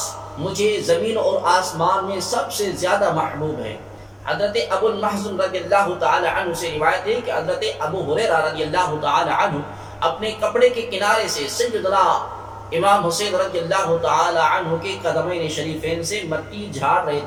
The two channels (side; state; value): both; identical; correlation 1.00